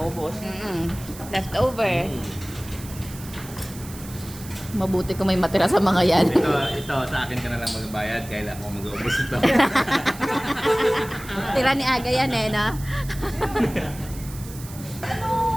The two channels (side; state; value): right; noise; hiss, 16 dB below the sound